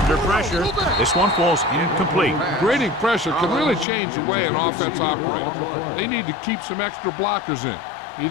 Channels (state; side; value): drops out; right; at 3.9 s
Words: pressure, this one falls incomplete. Grading pressure can really change the way an offense operates. They need to keep some extra blockers in,